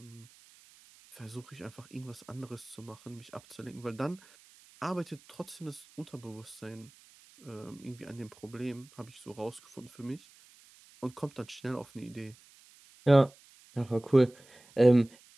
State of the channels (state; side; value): noise; right; hiss, 25 dB below the sound